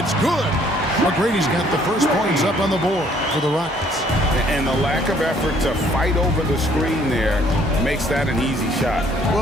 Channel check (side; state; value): both; normal; correlation 0.62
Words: good. McGrady's got the first points up on the board for the Rockets. And the lack of effort to fight over the screen there makes that an easy shot.